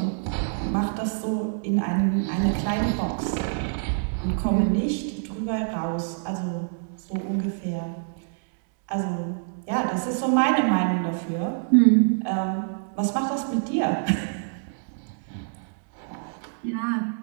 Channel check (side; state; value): left; silent; digital silence